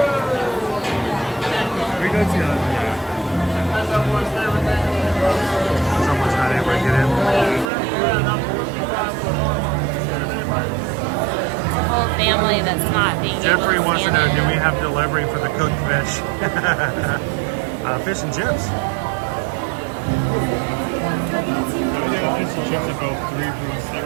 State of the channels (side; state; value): left; drops out; at 7.7 s